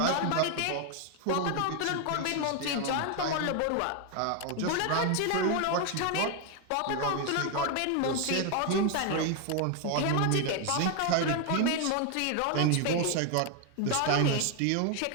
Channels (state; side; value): different; both; correlation 0.01